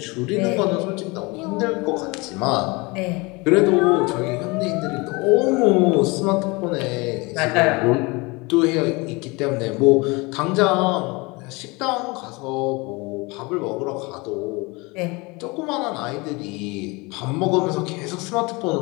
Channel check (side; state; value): right; quieter; 25.8 dB